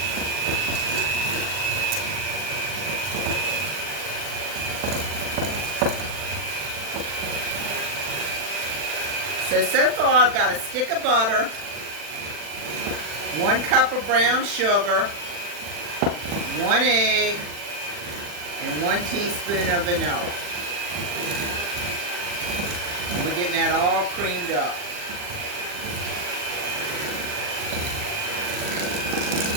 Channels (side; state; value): left; late; 40 ms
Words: So far I've got a stick of butter, 1 cup of brown sugar, 1 egg, and 1 teaspoon of vanilla. And we're getting that all creamed up.